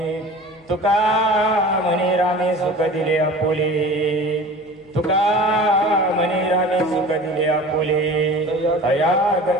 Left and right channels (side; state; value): left; noise; hum, 30 dB below the sound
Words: तुका म्हणे रामे सुख दिले आपुले तुका म्हणे रामे सुख दिले आपुले अया